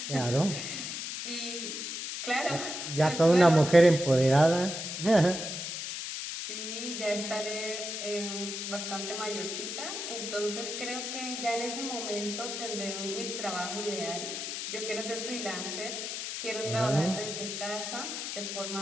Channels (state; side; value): noise; left; hiss, 5 dB below the sound